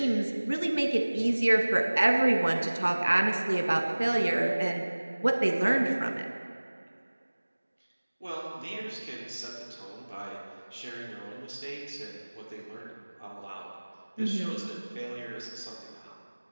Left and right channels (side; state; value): both; inverted; correlation -1.00